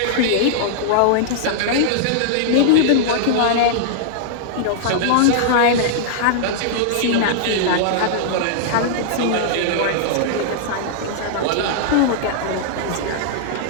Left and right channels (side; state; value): both; different; correlation -0.01